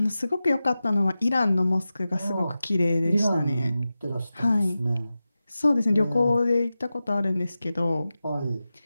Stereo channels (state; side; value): inverted; both; correlation -0.94